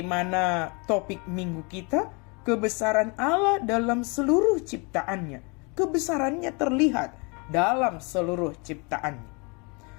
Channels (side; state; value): right; quieter; 31.1 dB